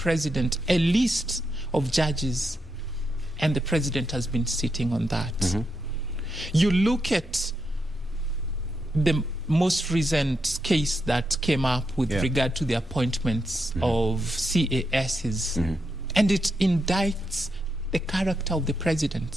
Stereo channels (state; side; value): normal; both; correlation 0.84